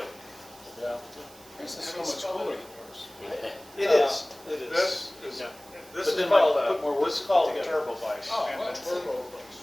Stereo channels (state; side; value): noise; right; hiss, 22 dB below the sound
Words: Yeah. This is so much cooler than yours. It is. It is. This is Yeah. this But is then called put more wood this is called a together. turbo vise. Oh, And that's the- turbo.